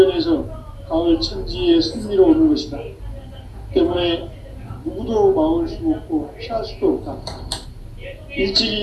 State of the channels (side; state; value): both; identical; correlation 1.00